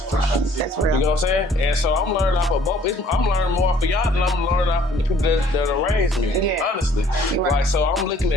That's real. You know what I'm saying? And so I'm learning off of both. I'm learning more off of y'all than I'm learning off of the people that raised me. Yeah. Honestly. Right. Like, so I'm looking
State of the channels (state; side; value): normal; both; correlation 0.58